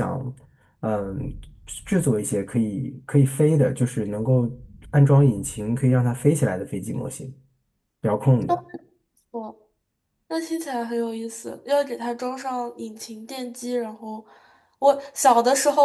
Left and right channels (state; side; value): identical; both; correlation 1.00